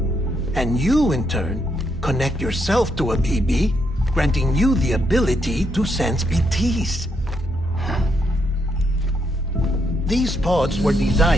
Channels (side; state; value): both; normal; correlation 0.77